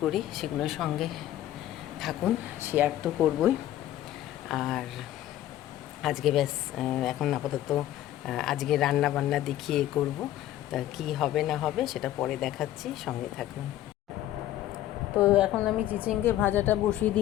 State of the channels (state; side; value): quieter; right; 13.2 dB